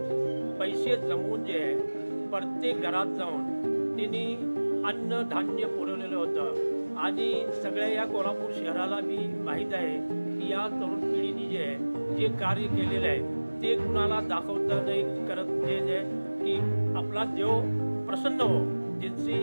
पैसे जमवून जे आहे प्रत्येक घरात जाऊन त्यांनी अन्न धान्य पुरवलेलं होतं. आणि सगळ्या या कोल्हापूर शहराला मी माहीत आहे की या तरुण पिढीने जे आहे जे कार्य केलेलं आहे ते कुणाला दाखवता नाही करत. जे की आपला देव प्रसन्न हो,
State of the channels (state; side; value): inverted; both; correlation -1.00